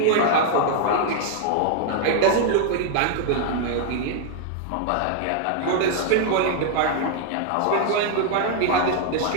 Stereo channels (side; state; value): both; different; correlation -0.01